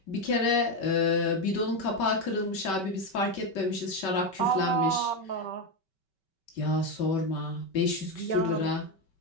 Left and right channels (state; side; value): late; right; 5.3 ms